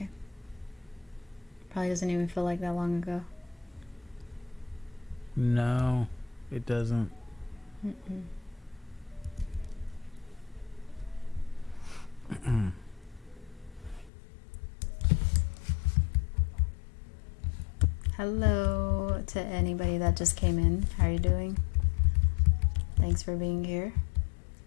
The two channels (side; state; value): right; drops out; at 14.1 s